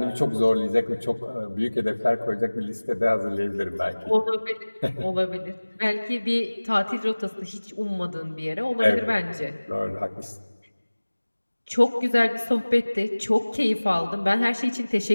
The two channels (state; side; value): inverted; both; correlation -1.00